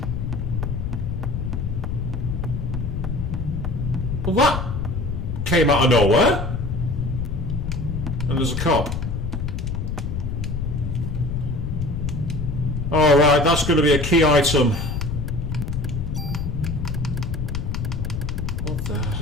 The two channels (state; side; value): noise; left; rumble, 2 dB below the sound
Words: Well, that came out of nowhere. And there's a cop. Alright, that's going to be a key item. What the